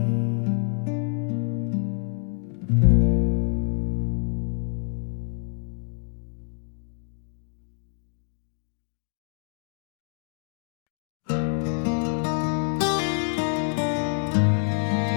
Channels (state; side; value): silent; right; 56 dB below the other